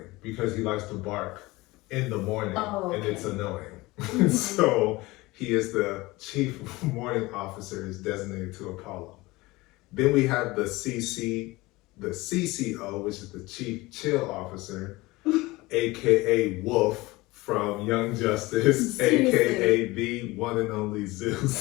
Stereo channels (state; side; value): quieter; right; 21.1 dB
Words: because he likes to bark in the morning and it's annoying. Mm-hmm. So he is the Chief Morning Officer is designated to Apollo. Then we have the CCO, which is the Chief Chill Officer, aka Wolf from Young Justice, aka the one and only